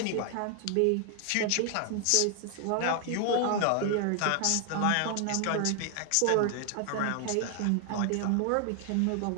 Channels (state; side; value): different; both; correlation 0.00